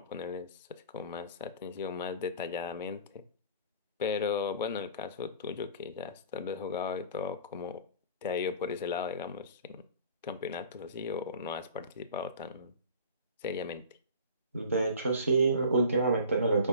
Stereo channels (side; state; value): both; inverted; correlation -0.42